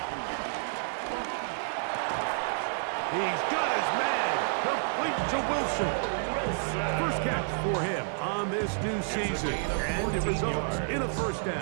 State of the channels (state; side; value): silent; left; digital silence